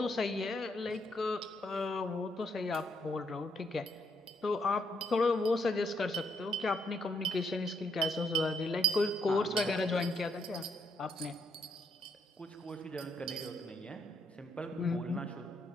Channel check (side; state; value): both; normal; correlation 0.75